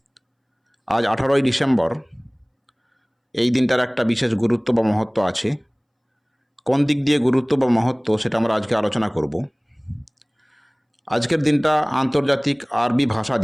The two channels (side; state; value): both; identical; correlation 1.00